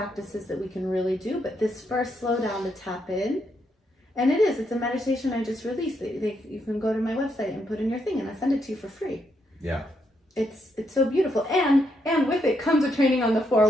that we can really do. But this first slow down to tap in, and it's a meditation I just released. You can go to my website and put in your thing, and I send it to you for free. It's so beautiful, and with it comes a training on the 4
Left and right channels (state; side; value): normal; both; correlation 0.78